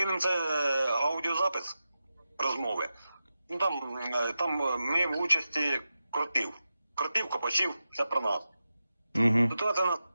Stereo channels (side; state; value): both; inverted; correlation -0.91